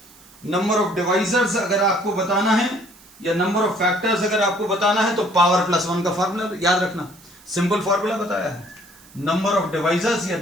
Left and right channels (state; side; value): noise; right; hiss, 24 dB below the sound